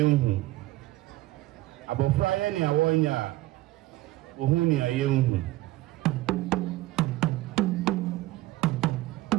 Abofra ya ni awanya ohu ni ayenhu.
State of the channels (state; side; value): quieter; left; 17.4 dB